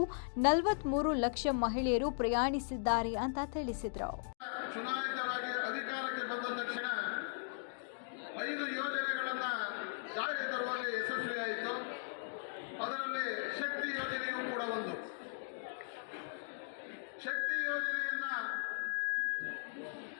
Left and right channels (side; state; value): right; silent; digital silence